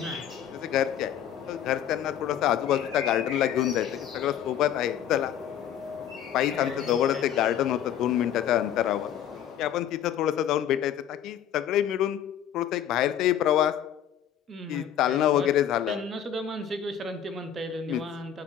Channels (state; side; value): quieter; right; 9.8 dB